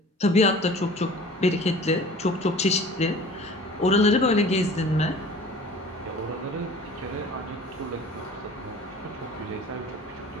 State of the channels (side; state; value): both; normal; correlation 0.44